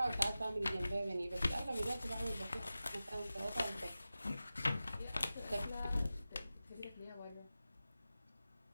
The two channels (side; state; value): both; inverted; correlation -0.94